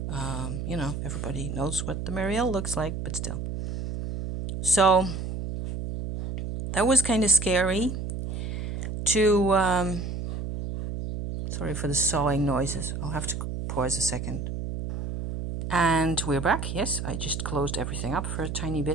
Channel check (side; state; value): right; noise; hum, 5 dB below the sound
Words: Everybody knows what the Marielle looks like, but still. So that was kind of scary to... sorry for the sawing noises. I'll have to pause a second. And we're back. Yes, I just closed everything up for a tiny